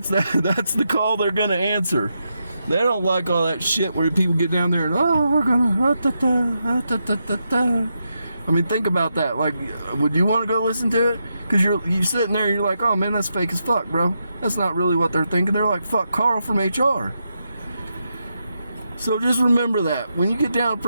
the call they're gonna answer. They don't like all that shit where people get down there and, oh, we're gonna I mean, think about that. Like, would you want to go listen to it? Because you're sitting there and you're like, oh man, that's fake as fuck, bro. That's not really what they're thinking. They're like, fuck Carl from HR. So just remember that when you get down and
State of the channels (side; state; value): both; inverted; correlation -0.84